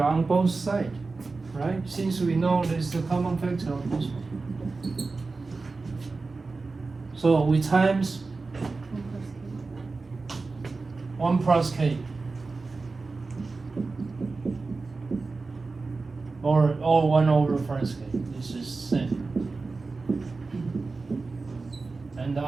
on both sides. Right? Since we know there's the common factor on this one. So we times 1 plus K. Or 1 over plus K. This is same. And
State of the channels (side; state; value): left; quieter; 3.9 dB